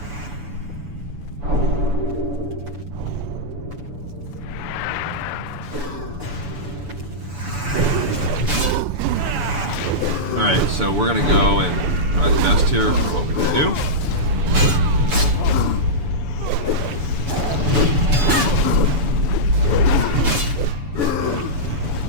Alright, so we're gonna go and try the best here for what we can do.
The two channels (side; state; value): left; late; 7.0 ms